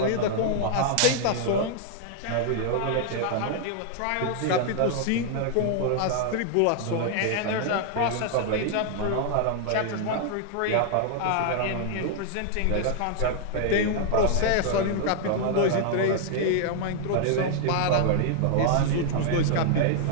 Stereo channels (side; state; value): both; different; correlation 0.00